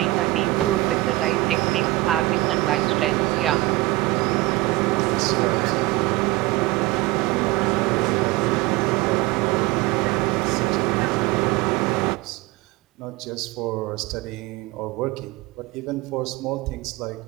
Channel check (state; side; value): quieter; left; 19.9 dB